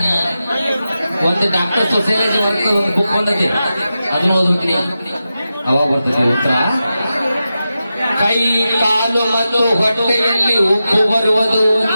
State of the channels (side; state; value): both; inverted; correlation -0.91